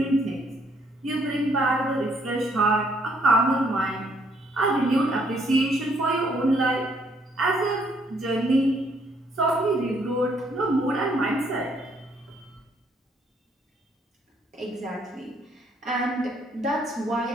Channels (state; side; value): normal; both; correlation 0.68